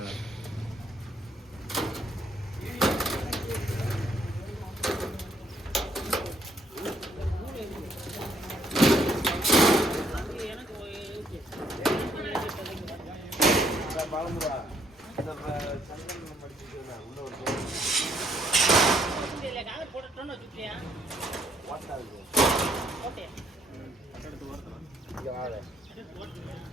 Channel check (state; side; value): normal; both; correlation 0.69